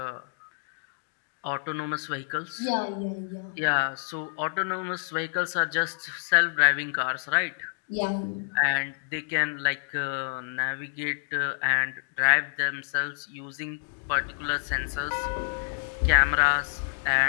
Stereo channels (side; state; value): right; silent; digital silence